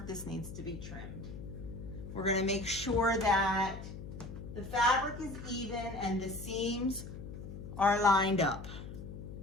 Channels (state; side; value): noise; left; hum, 10 dB below the sound